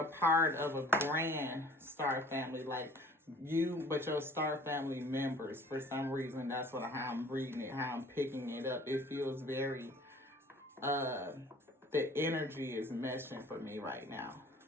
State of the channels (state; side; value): normal; both; correlation 0.50